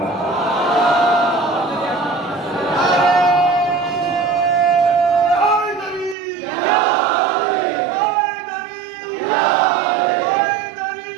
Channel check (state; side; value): drops out; left; at 6.2 s